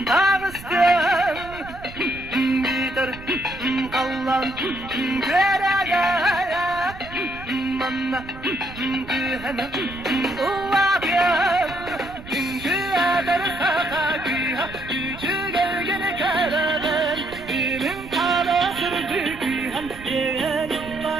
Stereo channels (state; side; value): noise; right; rumble, 16 dB below the sound